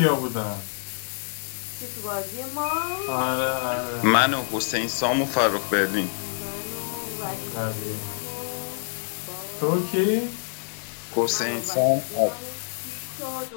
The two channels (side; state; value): right; silent; digital silence